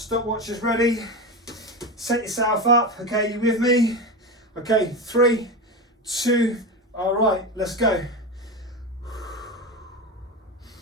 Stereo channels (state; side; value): normal; both; correlation 0.20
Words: is ready. Set yourself up. Okay, you with me? Okay, 3, 2, all right, let's go.